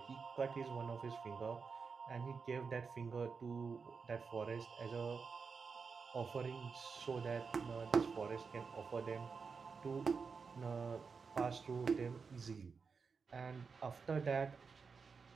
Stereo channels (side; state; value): left; quieter; 5.2 dB